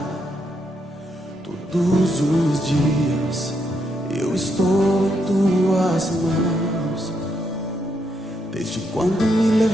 Todos os dias eu estou em tuas mãos. Desde quando me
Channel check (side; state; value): both; normal; correlation 0.78